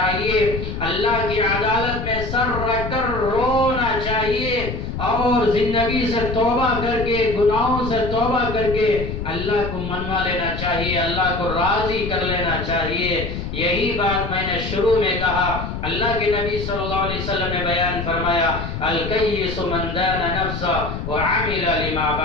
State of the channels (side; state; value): left; noise; rumble, 6 dB below the sound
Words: اللہ کی عدالت میں سر رکھ کر رونا چاہیے، اور زندگی سے توبہ کر کے، گناہوں سے توبہ کر کے اللہ کو منوا لینا چاہیے، اللہ کو راضی کر لینا چاہیے۔ یہی بات میں نے شروع میں کہا، اللہ کے نبی صلی اللہ علیہ وسلم نے بیان فرمایا الکیس من دان نفسہ وعمل لما